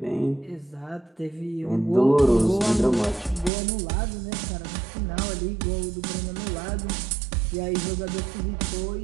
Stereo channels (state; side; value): drops out; left; at 3.5 s